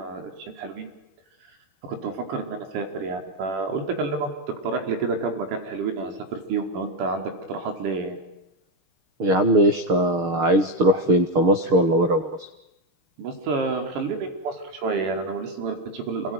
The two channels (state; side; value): late; left; 6.6 ms